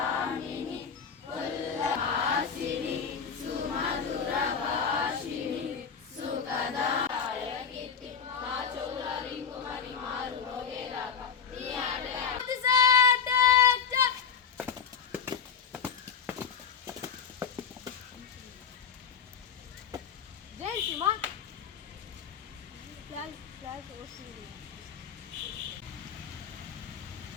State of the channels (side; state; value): right; quieter; 6.5 dB